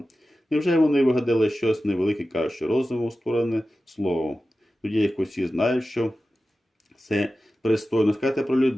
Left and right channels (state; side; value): normal; both; correlation 0.94